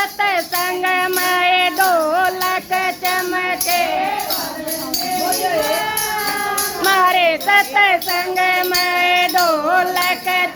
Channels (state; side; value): identical; both; correlation 1.00